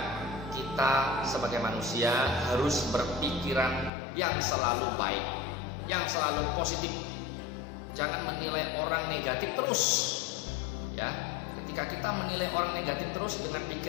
kita sebagai manusia harus berpikiran yang selalu baik, yang selalu positif. Jangan menilai orang negatif terus. Ya, ketika kita menilai orang negatif terus dengan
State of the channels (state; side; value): drops out; right; at 3.9 s